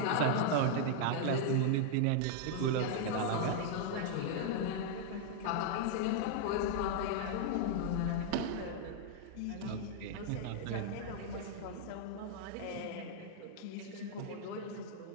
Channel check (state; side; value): different; both; correlation -0.01